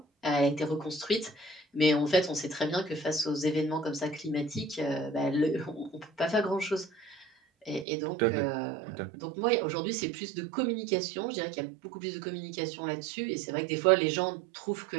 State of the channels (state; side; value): drops out; left; at 7.9 s